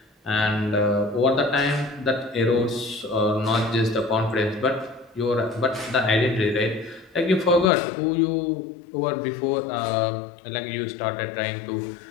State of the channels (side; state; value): right; drops out; at 7.7 s